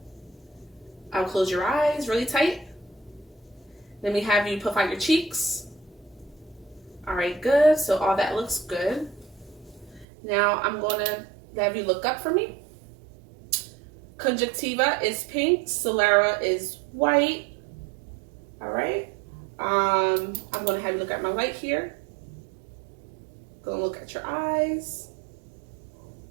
I'll close your eyes really tight. Then we have you puff out your cheeks. All right, good. So all that looks good. Now I'm gonna have you look up for me. Conjunctiva is pink. Sclera is white. All right. I'm gonna have you look at my light here. Gonna look at your eyes.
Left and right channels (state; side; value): drops out; left; at 10.1 s